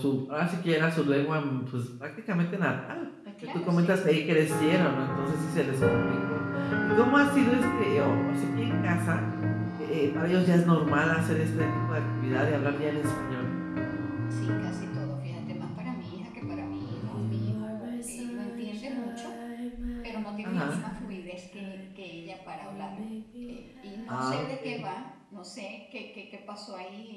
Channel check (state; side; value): identical; both; correlation 1.00